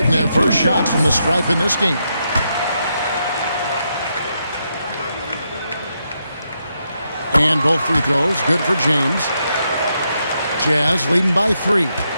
their first shots from the stripe in this game. And both free throws good for James. Jazz leading by 3.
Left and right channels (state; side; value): inverted; both; correlation -0.81